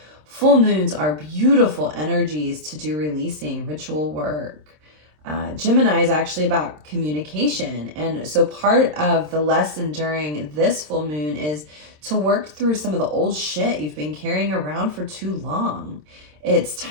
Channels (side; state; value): left; late; 26 ms